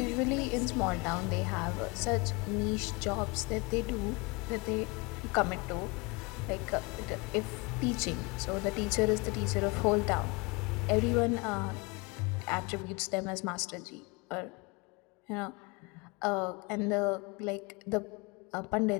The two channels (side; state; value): right; quieter; 27.3 dB